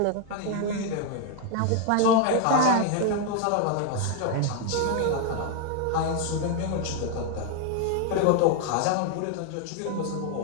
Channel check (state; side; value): different; both; correlation 0.01